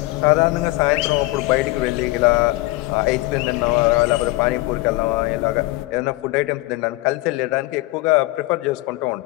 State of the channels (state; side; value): quieter; right; 20.2 dB